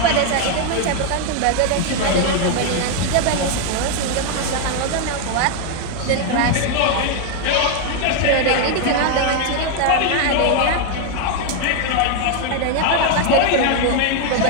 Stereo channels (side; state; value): both; different; correlation 0.01